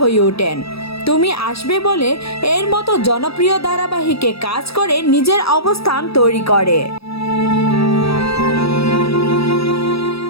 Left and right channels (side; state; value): right; late; 0.77 ms